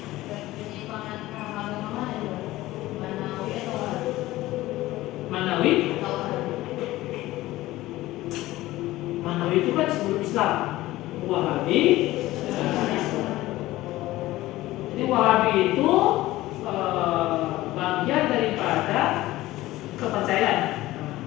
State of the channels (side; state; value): right; quieter; 17.1 dB